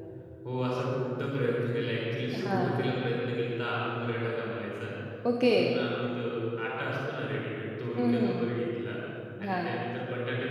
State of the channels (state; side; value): identical; both; correlation 1.00